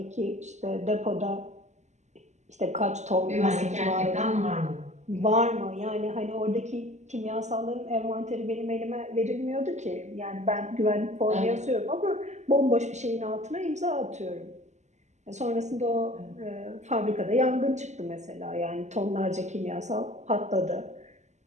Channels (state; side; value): late; left; 0.33 ms